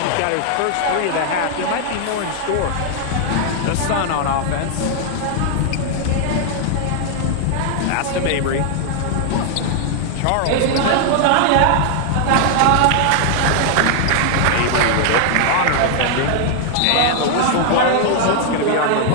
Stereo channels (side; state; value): both; different; correlation 0.00